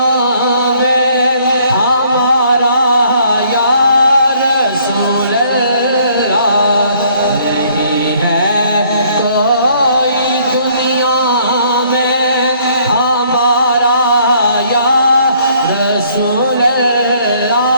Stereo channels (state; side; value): inverted; both; correlation -0.62